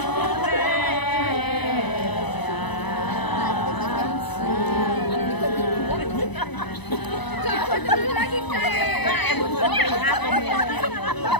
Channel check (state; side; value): late; right; 0.99 ms